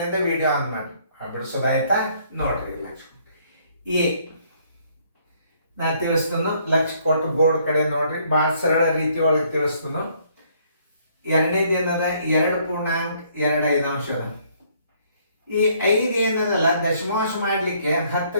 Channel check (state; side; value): inverted; both; correlation -0.66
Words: ವಿಡಿಯೋ ಆನ್ ಮಾಡಿ. ಬಿಡಿಸೋದಾಯ್ತಾ ನೋಡ್ರಿ. ಲಕ್ಷ ಎ ನಾ ತಿಳಿಸ್ತೀನಿ. ಲಕ್ಷ ಕೊಟ್ಟು ಬೋರ್ಡ್ ಕಡೆ ನೋಡ್ರಿ. ಭಾಳ ಸರಳ ರೀತಿ ಒಳಗೆ ತಿಳಿಸ್ತೀನಿ. ಎರಡನೇದು ಏನದ 2.25 ಅದ. ಈ 5 ಏನದಲ್ಲ ದಶಮಾಂಶ ಮಾಡಲಿಕ್ಕೆ